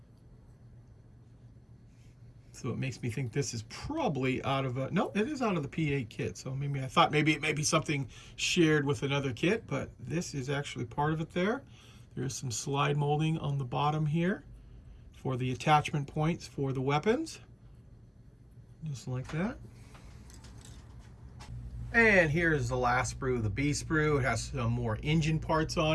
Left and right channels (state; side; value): identical; both; correlation 1.00